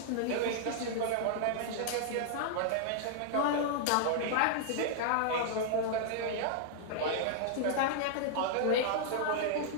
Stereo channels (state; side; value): different; both; correlation -0.01